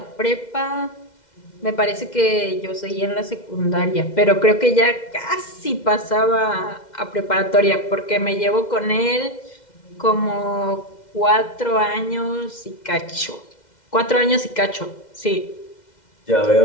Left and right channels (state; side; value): late; right; 2.1 ms